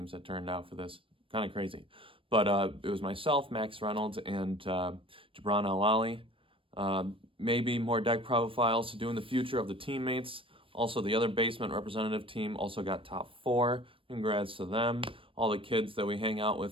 that turned out for this. Kind of crazy. But it was myself, Max Reynolds, and Jabran Al-Ali. Maybe more deck profiles to do in the future of the teammates. Also, the other basement representative team also got top 4. Congrats to them. All the kids that we hang out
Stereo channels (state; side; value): late; left; 0.25 ms